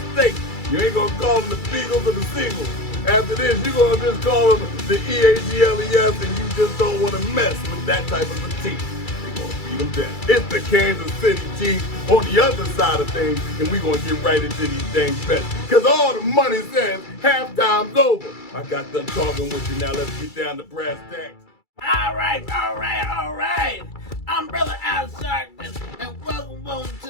You ain't gonna call them the Beagles or the Seagulls. After this, you're gonna just call them the EAGLES, and you just don't want to mess with that type of a team. Them down. It's the Kansas City Chiefs on the other side of things, and we're going to get right into these things bets. Because all the money says halftime's over. I got done talking with you. Now let's get down to brass tacks. All right. I'm Brother Al Sharkman, and welcome to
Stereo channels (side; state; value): right; late; 2.3 ms